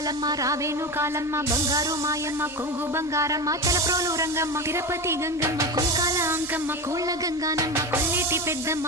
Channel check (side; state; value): both; normal; correlation 0.23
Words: రావేను కాలమ్మ బంగారు మాయమ్మ కొంగు బంగారమ్మ తలప్రోలు రంగమ్మ తిరుపతి గంగమ్మ కుంకాల అంకమ్మ కోళ్ళ గంగానమ్మ కొల్లేటి